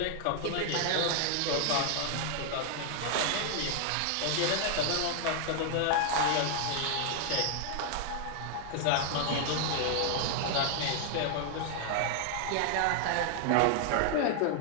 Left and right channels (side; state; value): both; different; correlation 0.00